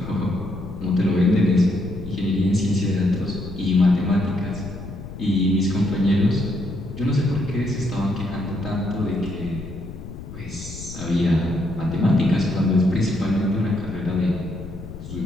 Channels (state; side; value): noise; left; rumble, 12 dB below the sound